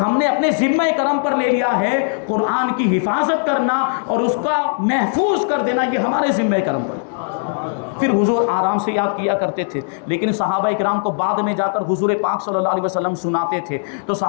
ہم نے اپنے ذمہ کرم پر لے لیا ہے قرآن کی حفاظت کرنا اور اس کا محفوظ کر دینا، یہ ہمارے ذمہ کرم پر۔ پھر حضور آرام سے یاد کیا کرتے تھے، لیکن صحابہ کرام کو بعد میں جا کر حضور پاک صلی اللہ علیہ وسلم سناتے تھے، تو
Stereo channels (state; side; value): silent; right; 67 dB below the other